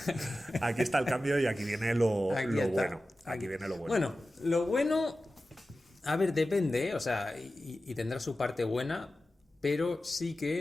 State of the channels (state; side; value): normal; both; correlation 0.94